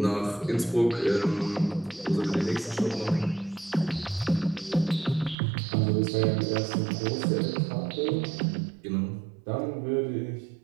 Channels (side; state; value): left; drops out; at 5.4 s